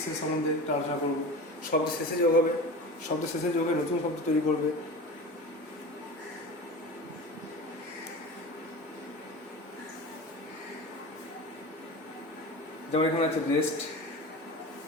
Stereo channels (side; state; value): both; normal; correlation 0.32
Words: সম্বন্ধে একটু আলোচনা করবো। শব্দের শেষে যোগ হবে, শব্দের শেষে যোগ হয়ে নতুন শব্দ তৈরি করবে। যেমন এখানে আছে রেস্ট।